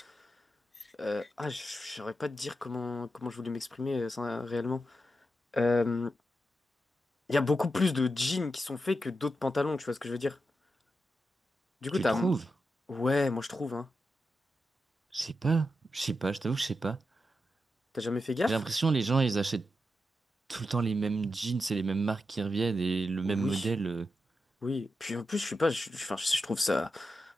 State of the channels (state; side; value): normal; both; correlation 0.88